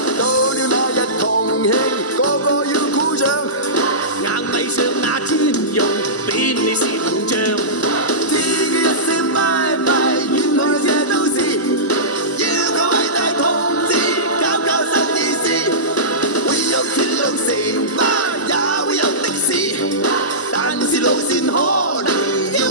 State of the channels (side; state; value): both; normal; correlation -0.19